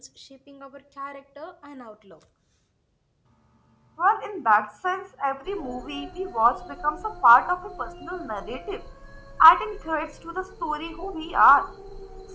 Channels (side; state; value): both; identical; correlation 1.00